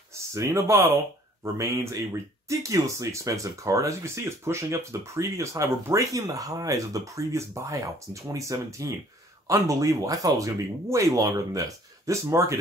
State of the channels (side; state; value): both; normal; correlation 0.56